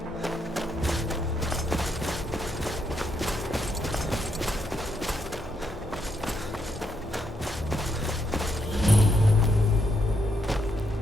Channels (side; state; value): both; normal; correlation 0.78